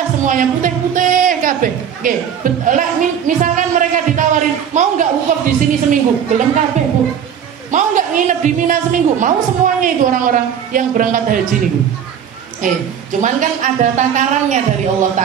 semuanya putih-putih kabeh. Misalkan mereka ditawarin, mau nggak wukuf di sini seminggu? Belum kabeh, Bu. Mau nggak nginep di Mina seminggu? Mau semuanya itu orang-orang yang berangkat haji nih. Cuman kan ada takarannya dari Allah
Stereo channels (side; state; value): left; quieter; 8.5 dB